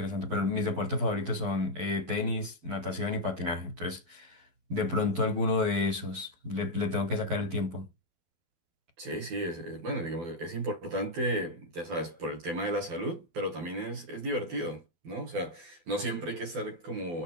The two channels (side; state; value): left; late; 12 ms